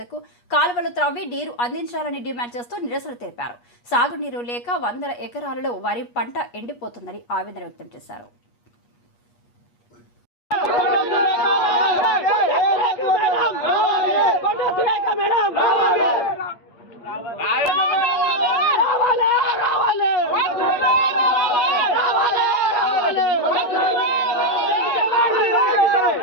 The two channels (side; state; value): right; late; 8.4 ms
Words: కాలువలు త్రవ్వి నీరు అందించాలని డిమాండ్ చేస్తూ నిరసన తెలిపారు. సాగునీరు లేక 100 ఎకరాలలో వరి పంట ఎండిపోతుందని ఆవేదన వ్యక్తం చేశారు.